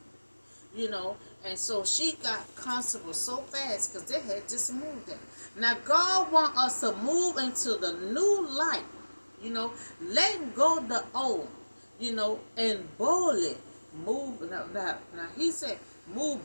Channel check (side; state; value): both; inverted; correlation -1.00